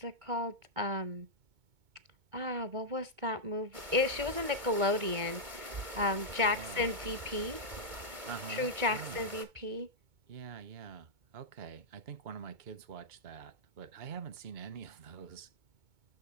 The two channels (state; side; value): late; left; 2.2 ms